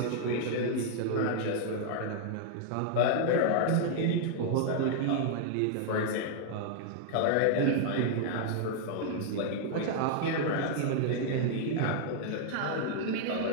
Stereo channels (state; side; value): different; both; correlation -0.01